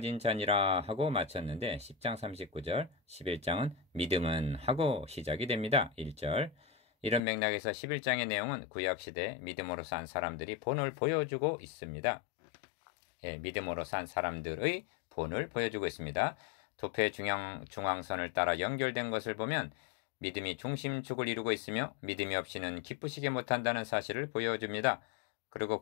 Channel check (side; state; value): right; drops out; at 7.2 s